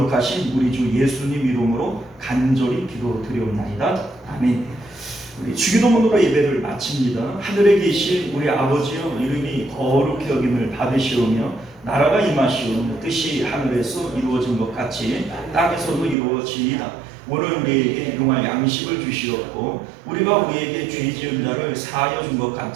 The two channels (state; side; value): drops out; left; at 16.2 s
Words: 우리 주 예수님 이름으로 간절히 기도드리옵나이다. 아멘. 우리 주기도문으로 예배를 마칩니다. 하늘에 계신 우리 아버지여, 이름이 거룩히 여김을 받으시오며 나라가 임하시오며 뜻이 하늘에서 이루어진 것 같이 땅에서도 이루어지이다. 오늘 우리에게 용할 양식을 주시옵고 우리가 우리에게 죄 지은 자를 사하여 준 것